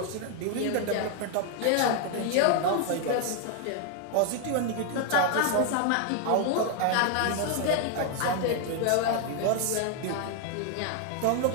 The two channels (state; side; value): different; both; correlation 0.00